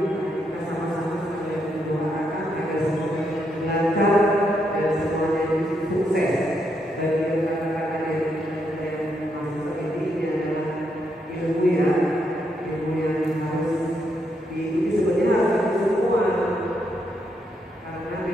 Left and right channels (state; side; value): normal; both; correlation 0.78